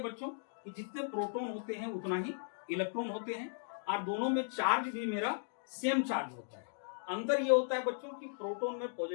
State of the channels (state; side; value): silent; right; digital silence